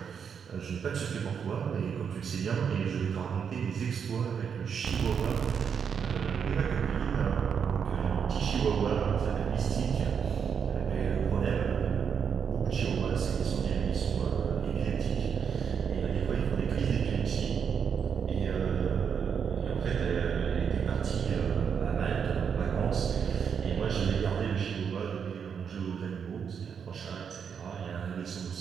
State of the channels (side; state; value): left; quieter; 7.1 dB